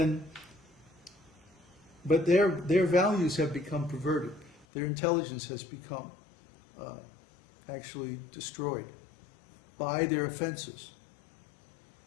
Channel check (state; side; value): drops out; right; at 4.7 s